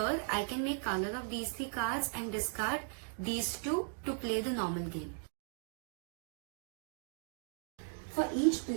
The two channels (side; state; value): left; silent; 53 dB below the other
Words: I can make color of these 3 cards and discard these 2 to play the normal game. For each